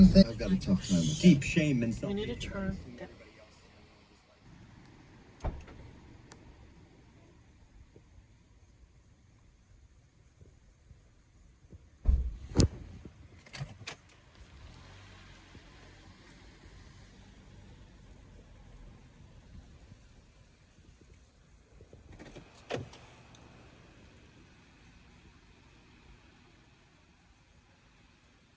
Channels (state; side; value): identical; both; correlation 1.00